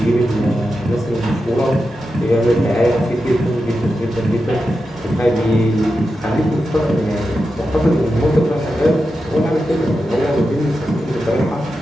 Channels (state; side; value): normal; both; correlation 0.89